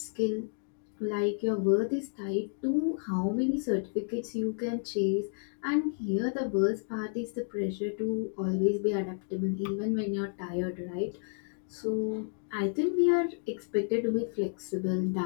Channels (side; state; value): right; silent; digital silence